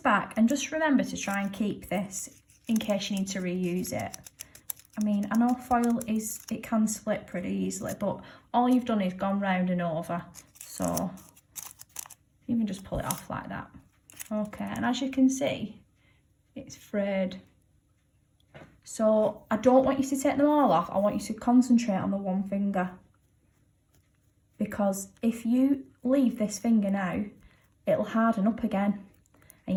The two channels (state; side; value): identical; both; correlation 1.00